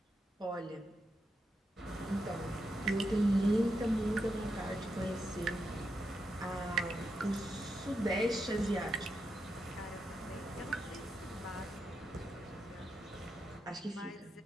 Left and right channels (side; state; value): both; normal; correlation 0.85